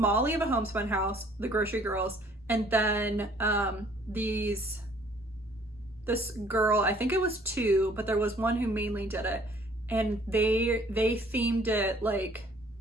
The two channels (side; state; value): both; normal; correlation 0.58